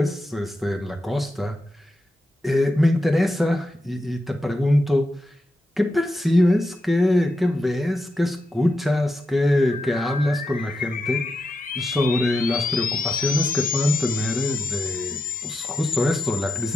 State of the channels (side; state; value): both; normal; correlation 0.86